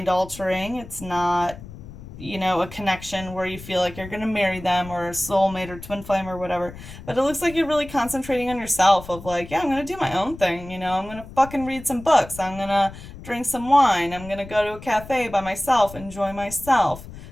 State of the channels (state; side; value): noise; left; rumble, 15 dB below the sound